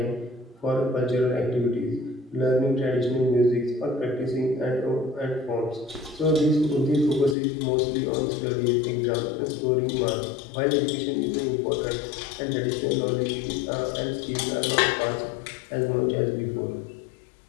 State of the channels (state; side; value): drops out; right; at 7.4 s